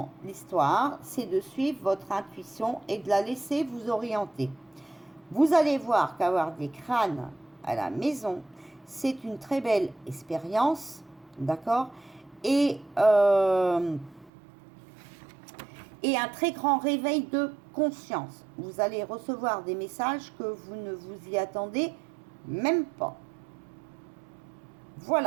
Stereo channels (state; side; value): drops out; left; at 14.3 s